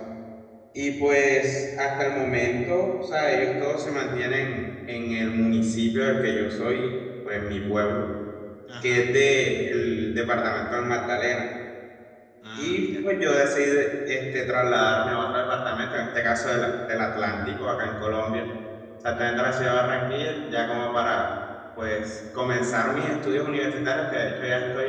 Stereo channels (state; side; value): identical; both; correlation 1.00